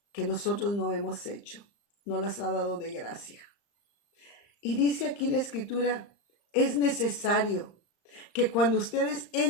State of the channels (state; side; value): late; right; 35 ms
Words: que nosotros no hemos hecho, no las ha dado de gracia. Y dice aquí la Escritura, es necesario que cuando ustedes